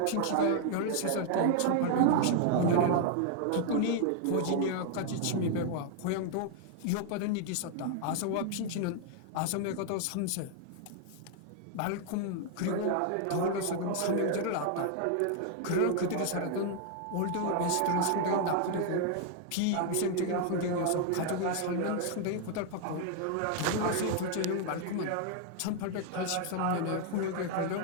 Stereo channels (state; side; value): different; both; correlation 0.00